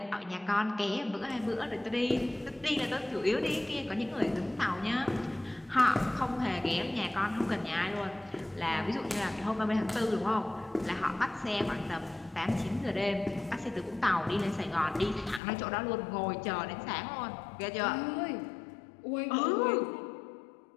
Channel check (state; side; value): drops out; right; at 15.4 s